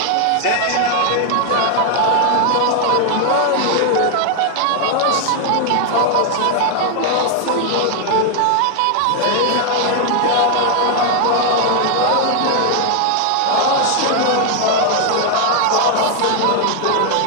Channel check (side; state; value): both; different; correlation 0.00